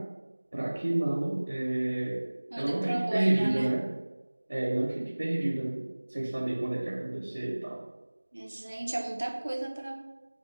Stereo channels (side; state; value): both; inverted; correlation -1.00